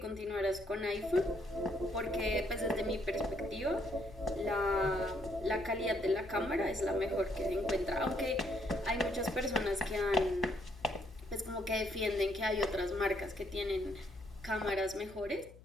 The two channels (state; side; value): noise; left; hum, 21 dB below the sound